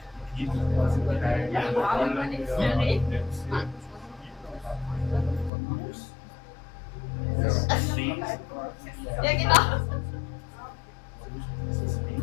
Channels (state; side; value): drops out; right; at 5.5 s